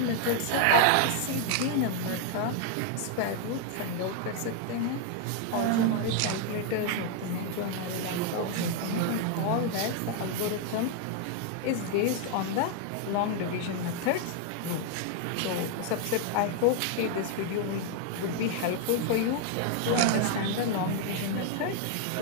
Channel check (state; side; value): different; both; correlation 0.00